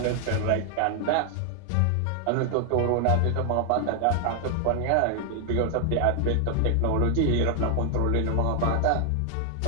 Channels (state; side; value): different; both; correlation 0.00